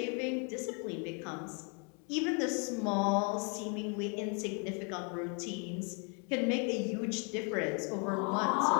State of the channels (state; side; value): quieter; right; 36.7 dB